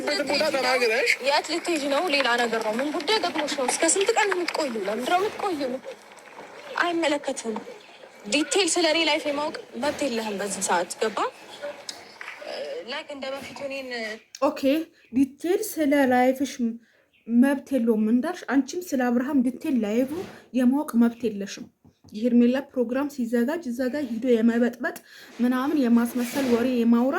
ቦታ ተናግረሽ የት ልትሄጂ ነው? ሌላ ነገር ነው። ምን ጉዳይ ገጥሞሽ ነው? እስከ ስንት ቀን የምትቆዩ? ለምንድን ነው የምትቆዩ? አይመለከትም። ዲቴል ስለ እኔ ላይፍ የማወቅ መብት የለህም በዚህ ሰዓት። ገባ? ላይክ እንደ በፊቱ እኔን ኦኬ፣ ዲቴል ስለ ላይፍሽ መብት የለውም እንዳልሽ፣ አንቺም ስለ አብርሃም ዲቴል ላይፉ የማወቅ መብት የለሽም። የሄርሜላ ፕሮግራም ሲዘጋጅ እዛ ጋር ሂዶ የመበጥበጥ ምናምን የማስመሰል ወሬ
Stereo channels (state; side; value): identical; both; correlation 1.00